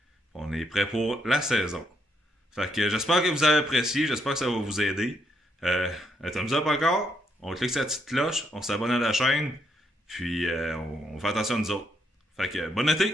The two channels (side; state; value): both; normal; correlation 0.76